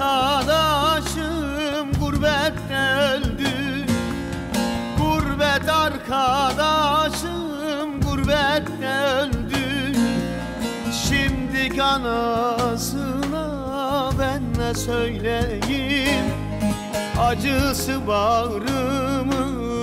gurbette öldü. Gurbet arkadaşım gurbette öldü. Şimdi anasına ben ne söyleyeyim? Acısı bağrımı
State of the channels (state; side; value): identical; both; correlation 1.00